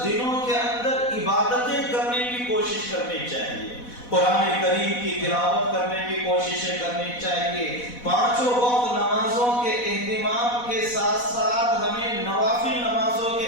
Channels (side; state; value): right; late; 4.1 ms